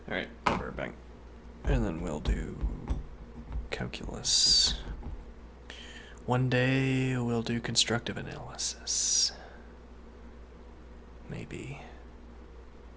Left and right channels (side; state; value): both; identical; correlation 1.00